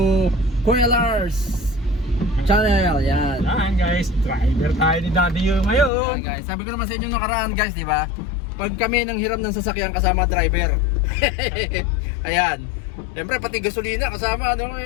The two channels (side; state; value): right; drops out; at 5.9 s